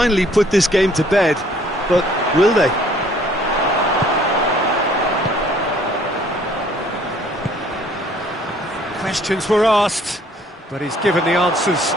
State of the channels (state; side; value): normal; both; correlation 0.59